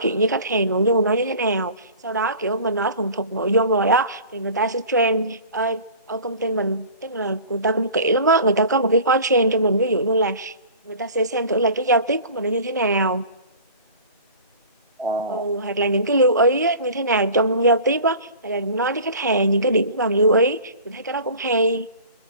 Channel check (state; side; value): inverted; both; correlation -0.42